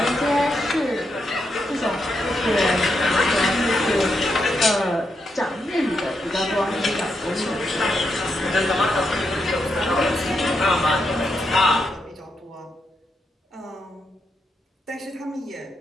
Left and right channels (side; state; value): both; normal; correlation 0.82